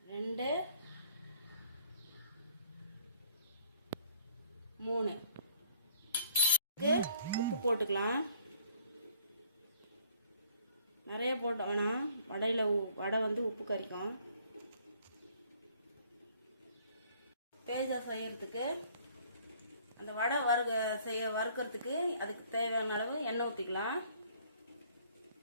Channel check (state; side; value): inverted; both; correlation -0.61